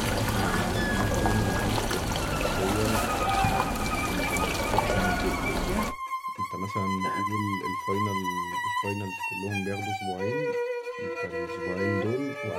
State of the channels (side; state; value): both; identical; correlation 1.00